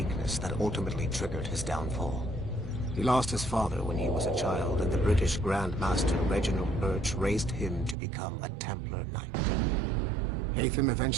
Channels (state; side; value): drops out; left; at 8.0 s